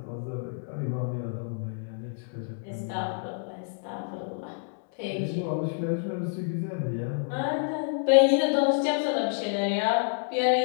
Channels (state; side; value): silent; right; digital silence